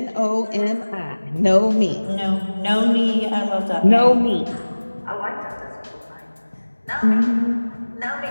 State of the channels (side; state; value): both; inverted; correlation -1.00